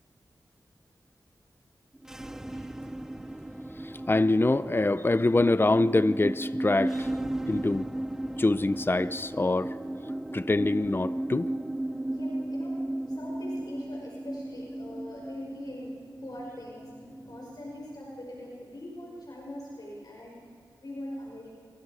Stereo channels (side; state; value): both; normal; correlation 0.93